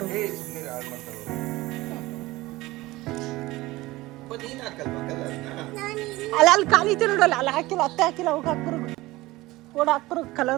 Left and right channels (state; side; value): quieter; left; 19.2 dB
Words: ಅಲ್ಲ ಅಲ್ಲಿ ಖಾಲಿ ಐತೆ ನೋಡಲ್ಲ, ಅಲ್ಲಿ ಹಾಕಿಲ್ಲ, ಅತ್ತೆ ಹಾಕಿಲ್ಲ, ಹೋಗಿ ಹಾಕ್ಬರೋದು. ಓಡ ಹಾಕ್ಬರೋದು